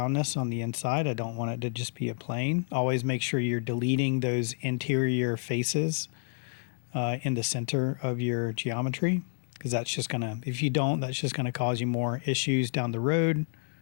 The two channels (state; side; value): silent; right; digital silence